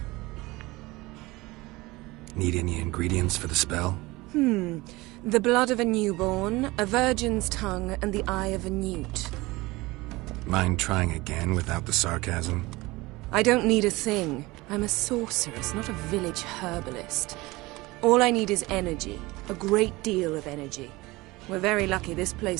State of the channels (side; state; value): left; quieter; 21.3 dB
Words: Need any ingredients for the spell? The blood of a newborn, a virgin's tongue, and the eye of a newt. Mind trying again without the sarcasm? I don't need a thing. I'm a sorceress, not a village herbalist. All I need is energy. A great deal of energy. We're very lucky this